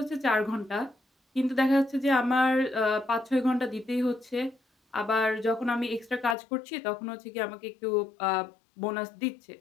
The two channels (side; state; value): right; drops out; at 6.4 s